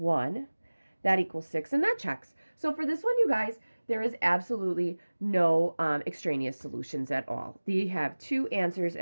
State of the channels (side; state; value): both; inverted; correlation -1.00